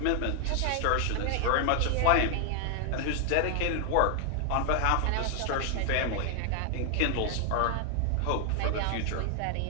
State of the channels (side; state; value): both; different; correlation 0.00